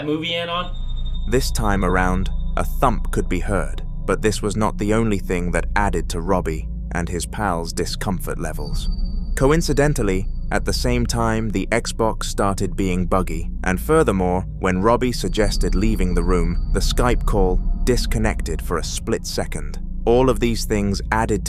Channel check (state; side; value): identical; both; correlation 1.00